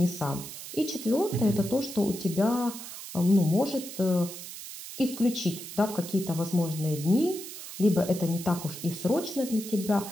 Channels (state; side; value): noise; right; hiss, 11 dB below the sound